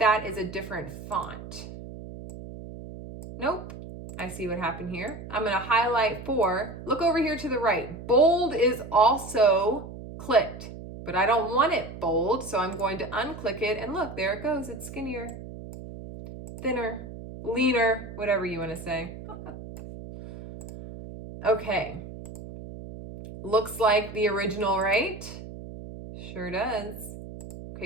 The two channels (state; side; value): noise; right; hum, 12 dB below the sound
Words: is a different font. Nope. I see what happened here. I'm going to highlight for. Look over here to the right. Bold is also clicked, but I don't want it bold. So I'm going to unclick it and look, there it goes. It's skinnier, thinner, leaner, whatever you want to say. Okay, looks like the original, right? Sure does.